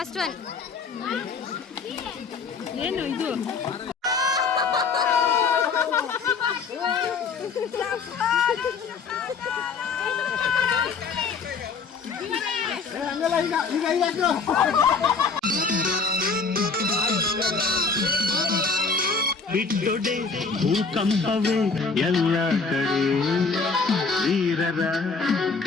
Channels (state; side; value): quieter; right; 4.8 dB